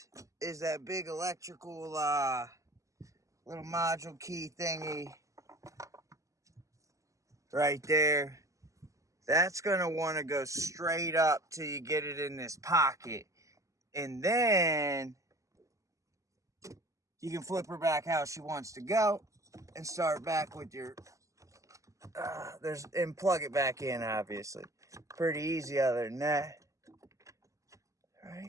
that big electrical little module key thingy right there. That's gonna want to go straight up till you get it in this pocket, and then you can flip her back how she wants to go and start back with your and plug it back in. Obviously, pretty easy other than that,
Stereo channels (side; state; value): left; late; 0.16 ms